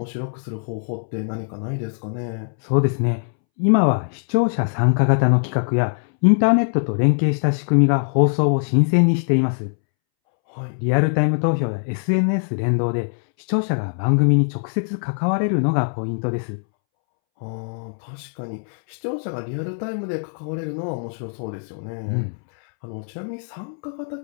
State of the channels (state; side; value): silent; right; 64 dB below the other